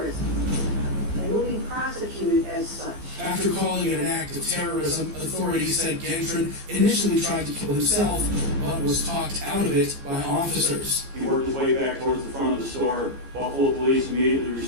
and will be prosecuted as such. After calling it an act of terrorism, authorities said Gendron initially tried to kill himself, but was talked out of it by officers. He worked his way back towards the front of the store. Buffalo police immediately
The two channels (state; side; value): late; left; 15 ms